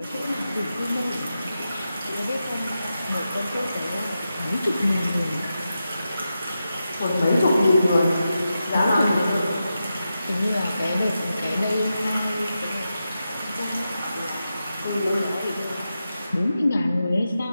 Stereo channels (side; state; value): both; inverted; correlation -0.90